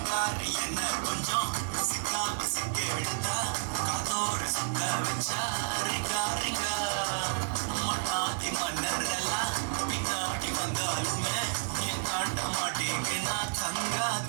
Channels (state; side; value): silent; left; digital silence